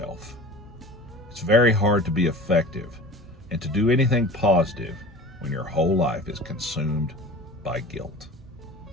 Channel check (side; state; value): both; normal; correlation 0.38